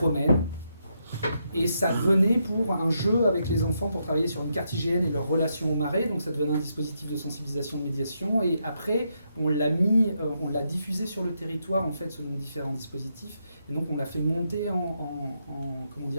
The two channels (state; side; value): inverted; both; correlation -0.80